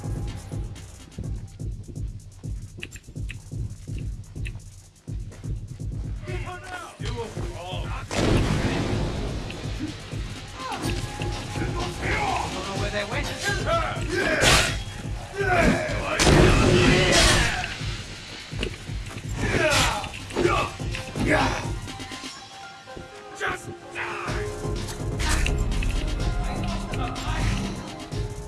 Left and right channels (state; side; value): identical; both; correlation 1.00